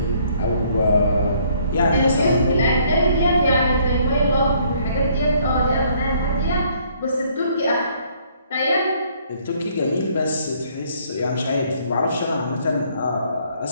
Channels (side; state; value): both; inverted; correlation -0.64